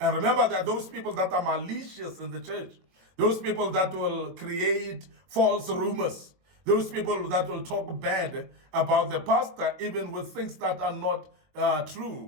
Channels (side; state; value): left; late; 22 ms